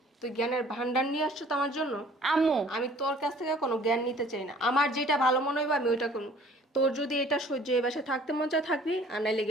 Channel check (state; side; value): normal; both; correlation 0.53